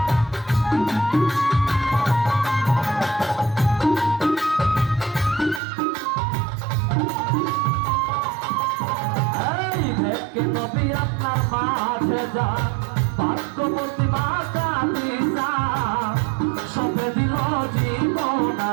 এই দেখে নবী আপনার মাঝে যা, ভাগ্যবতী মা কাঁদি যা, সবে দিল জীবন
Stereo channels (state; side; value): drops out; left; at 5.6 s